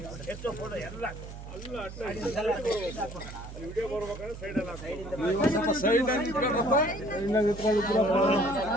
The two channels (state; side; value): noise; right; hum, 12 dB below the sound